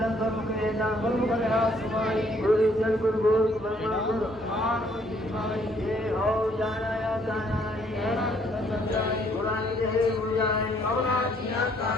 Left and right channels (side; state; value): both; normal; correlation 0.65